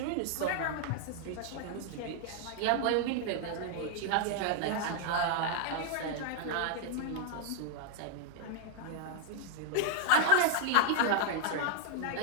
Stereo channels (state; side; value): different; both; correlation -0.01